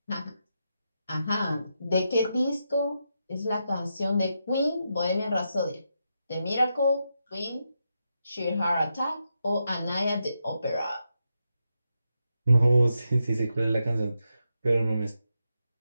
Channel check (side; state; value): both; inverted; correlation -0.85